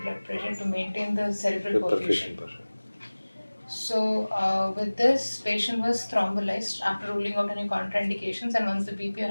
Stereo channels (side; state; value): both; inverted; correlation -1.00